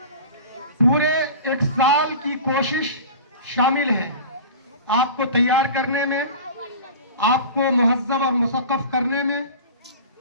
پورے ایک سال کی کوشش شامل ہے۔ آپ کو تیار کرنے میں، آپ کو مہذب اور مثقف کرنے میں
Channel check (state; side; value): inverted; both; correlation -0.36